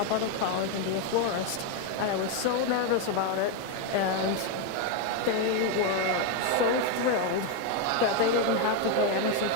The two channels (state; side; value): different; both; correlation 0.02